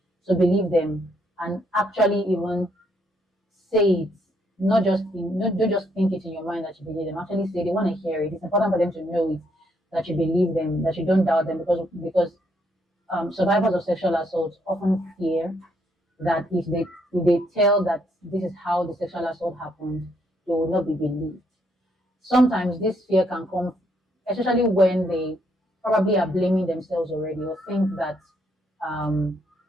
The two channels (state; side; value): normal; both; correlation 0.73